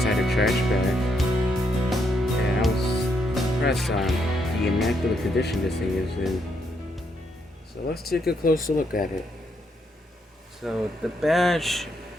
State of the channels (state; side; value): normal; both; correlation 0.76